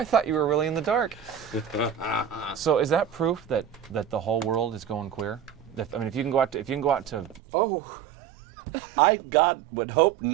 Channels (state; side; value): drops out; left; at 7.4 s